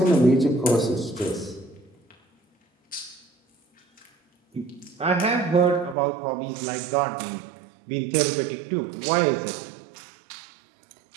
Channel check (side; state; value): left; drops out; at 6.0 s